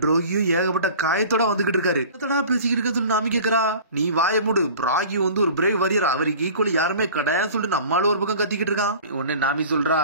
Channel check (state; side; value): inverted; both; correlation -0.42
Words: ட்ரோகியும் ஏகப்பட்ட காயத்தோட வந்துகிட்டு இருக்காரு. பேசிக்கிட்டு இருக்க சொல்லி நாமி கேக்குறா. நீ வாய மூடு, பிராகி வந்து ஒரு பிரேவ் வாரியர், அவருக்கு ஈக்குவலி யாருமே கிடையாதுன்னு சொல்லிட்டு நம்மளால ஒரு பக்கம் கத்திக்கிட்டு இருக்கான். உடனே நாமி சொல்றா,